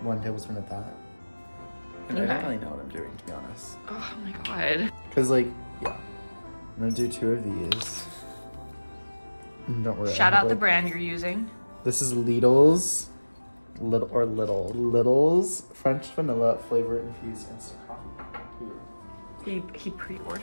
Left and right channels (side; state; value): both; inverted; correlation -1.00